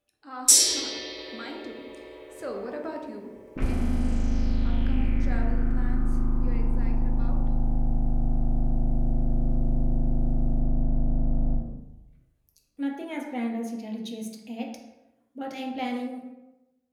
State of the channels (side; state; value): both; identical; correlation 1.00